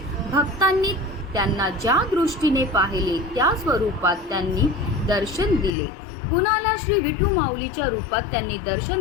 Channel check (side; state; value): right; drops out; at 5.7 s